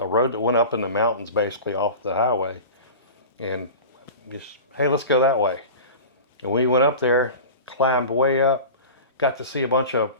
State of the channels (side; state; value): both; inverted; correlation -0.33